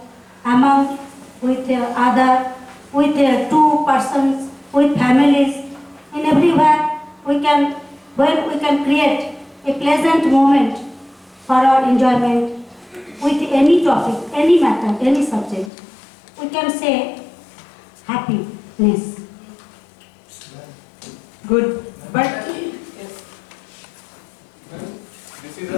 among, with other, with two persons, with families, in everywhere we can, when we can create a pleasant moment for our enjoyment with any topic, any matter, any subject. We can say happiness. Good. But This is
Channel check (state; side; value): drops out; right; at 15.7 s